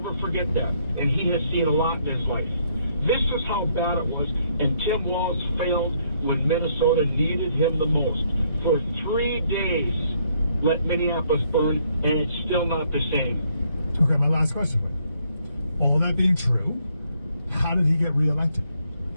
forget that, and he has seen a lot in his life. This is how bad it was, and Tim Walz failed when Minnesota needed him the most. For 3 days, let Minneapolis burn, and it's still not the same. Okay, my last question. All that being true, how did he get reelected?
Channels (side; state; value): both; inverted; correlation -0.70